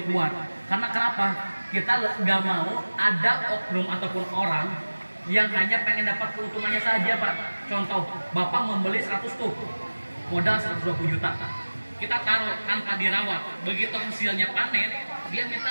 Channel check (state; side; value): inverted; both; correlation -1.00